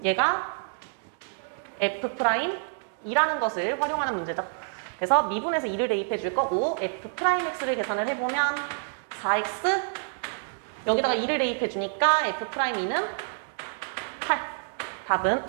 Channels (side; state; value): left; silent; digital silence